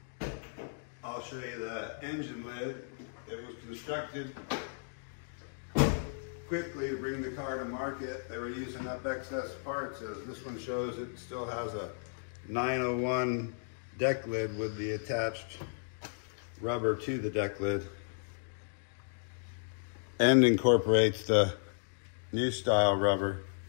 I'll show you the engine lid. It was constructed quickly to bring the car to market. They were using up excess parts, as this one shows. It still has a 901 deck lid with the attached rubber to the deck lid, and incorporates the new style rubber.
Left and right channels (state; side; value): silent; right; digital silence